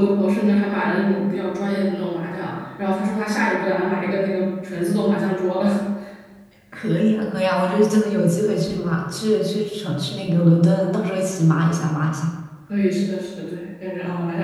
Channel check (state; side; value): identical; both; correlation 1.00